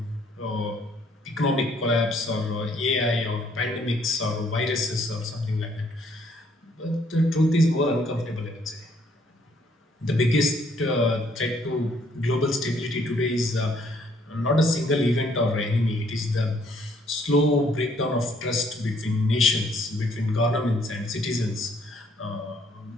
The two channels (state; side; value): normal; both; correlation 0.66